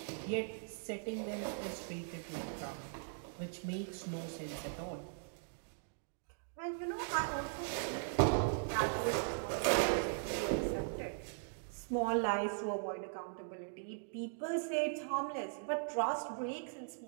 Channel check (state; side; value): silent; left; digital silence